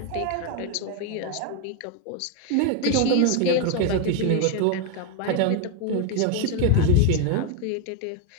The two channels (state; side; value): different; both; correlation 0.01